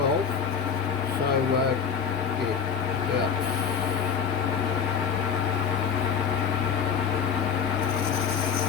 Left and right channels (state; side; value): quieter; right; 7.0 dB